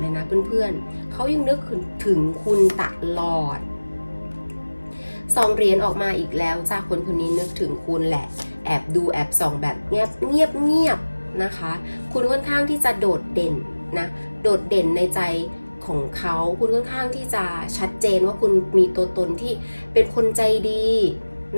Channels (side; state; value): both; inverted; correlation -1.00